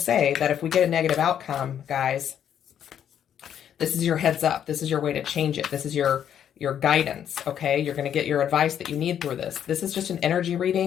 say that if we get a negative outcome, guys, this is your heads up. This is your way to change it. This is your guidance, okay? You're going to get your advice that you need through this. This is just an energy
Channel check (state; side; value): quieter; right; 9.4 dB